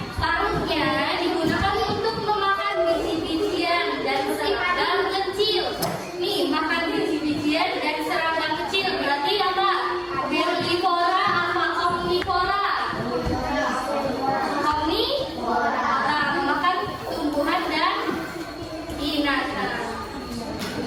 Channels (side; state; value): both; identical; correlation 1.00